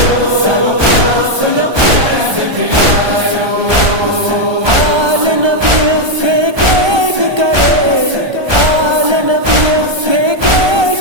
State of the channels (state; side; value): late; left; 1.3 ms